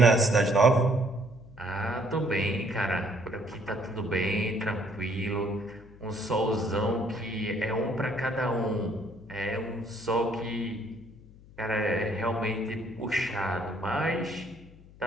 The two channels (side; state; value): left; noise; hum, 22 dB below the sound